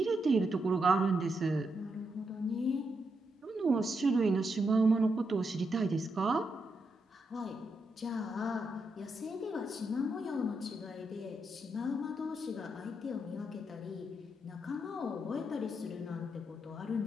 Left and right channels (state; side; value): normal; both; correlation 0.82